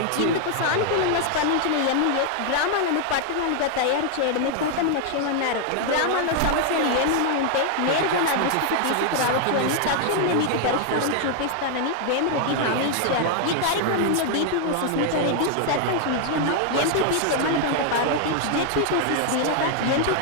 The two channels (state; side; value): different; both; correlation 0.00